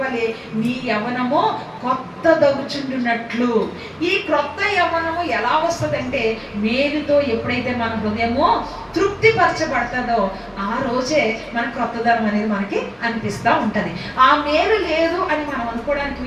వలె నీ యవ్వనము కొత్త దగుచుండునట్లు. ఈ క్రొత్త యవ్వనము ఎలా వస్తుందంటే, మేలుతో ఎప్పుడైతే మన హృదయము తృప్తిపరచబడుతుందో ఆ రోజే మన క్రొత్తదనం అనేది మనకి అనిపిస్తూ ఉంటుంది. ఆ మేలు లేదు అని మనం అనుకోవడానికి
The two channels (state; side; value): identical; both; correlation 1.00